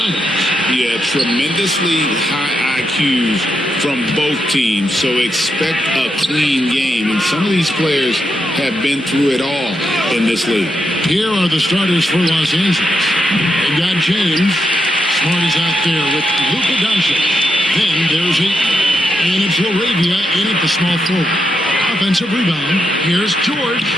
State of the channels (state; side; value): normal; both; correlation 0.83